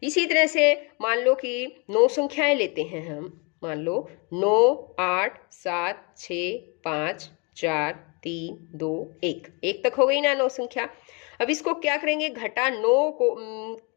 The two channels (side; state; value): right; quieter; 31.9 dB